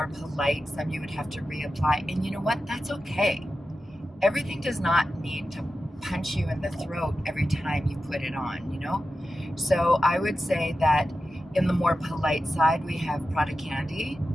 polite, some you would have to reapply. And you know what? That's okay. Everything does not need to punch you in the throat every time you put it on, you know? So I would say that in the more polite side, we have Prada Candy,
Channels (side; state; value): both; normal; correlation 0.92